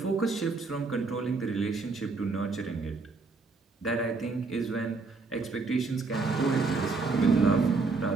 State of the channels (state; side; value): quieter; left; 4.0 dB